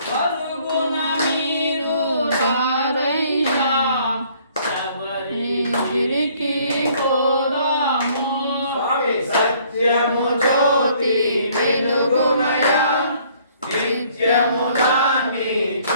పరుగున మీరు రారయ్యా శబరిగిరికి పోదాము. స్వామి సత్యము జ్యోతి వెలుగుమయా నిత్యము దాన్ని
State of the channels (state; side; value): inverted; both; correlation -0.61